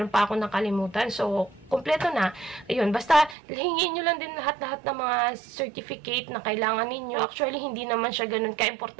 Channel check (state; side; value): drops out; left; at 3.4 s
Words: pa ako nakalimutan. So, kompleto na. Ayun, basta hingin nyo lang din lahat-lahat ng mga certificate na kailangan ninyo. Actually, hindi naman siya ganun